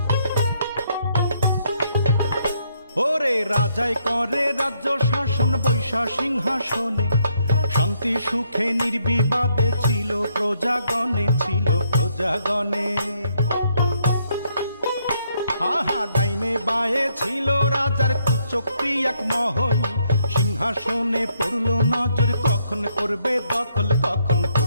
ওরে রাজাই করে রাজ্য শাসন বৈশা সিংহাসনে, শান্তি সুখে নির্বিবাদে ছিল প্রজাগণে, ছিল প্রজাগণে। আহা ডাইনে বায়ে ছিল রাজার কুচক্রি এক মহল, সিংহাসনে পড়ল নজর, কখন করবে দখল, কখন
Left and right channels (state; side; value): inverted; both; correlation -0.73